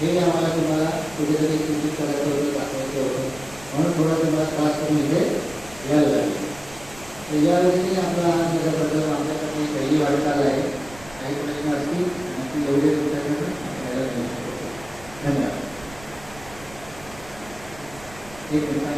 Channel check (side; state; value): right; noise; rumble, 20 dB below the sound